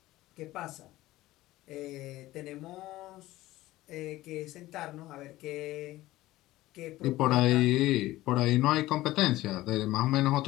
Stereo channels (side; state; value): right; quieter; 16.9 dB